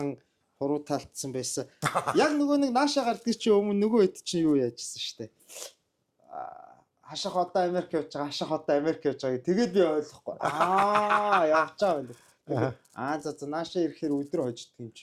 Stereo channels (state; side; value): identical; both; correlation 1.00